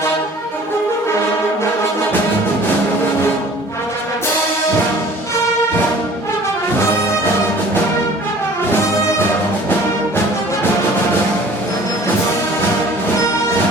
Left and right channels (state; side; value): normal; both; correlation 0.49